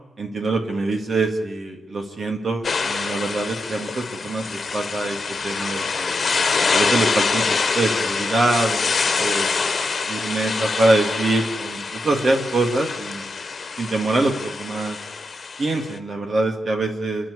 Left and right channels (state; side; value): normal; both; correlation 0.85